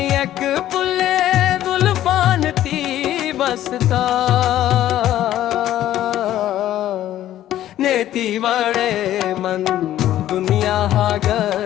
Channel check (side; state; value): right; quieter; 12.9 dB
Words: पुले दुल्फान थी बसता नेती वड़े मन दुनिया हा